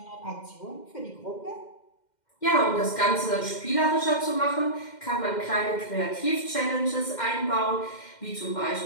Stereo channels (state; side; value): late; right; 2.1 ms